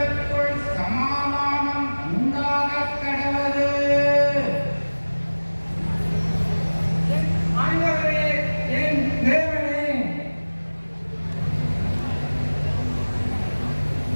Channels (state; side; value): inverted; both; correlation -1.00